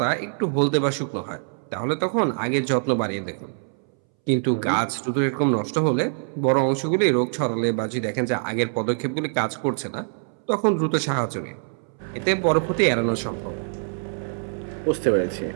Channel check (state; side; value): silent; left; 62 dB below the other